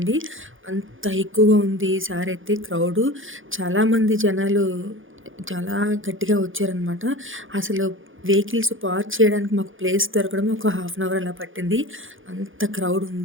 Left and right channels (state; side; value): late; left; 0.58 ms